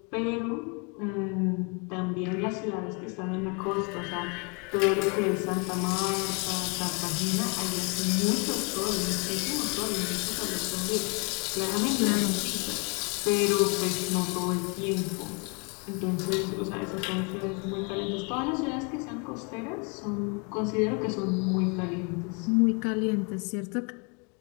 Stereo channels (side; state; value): right; quieter; 32.8 dB